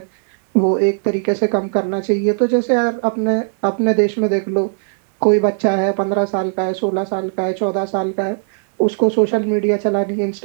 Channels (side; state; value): left; silent; 68 dB below the other